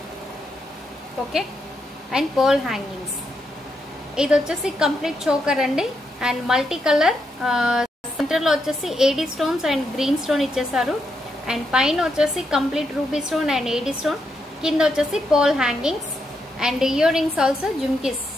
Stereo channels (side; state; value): both; normal; correlation 0.81